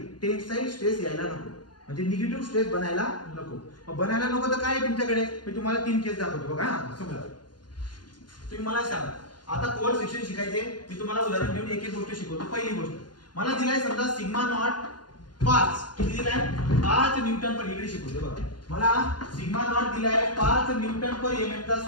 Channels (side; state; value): right; late; 0.71 ms